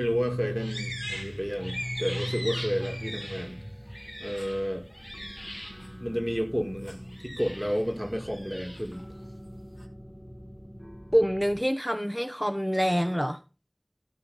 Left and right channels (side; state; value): both; identical; correlation 1.00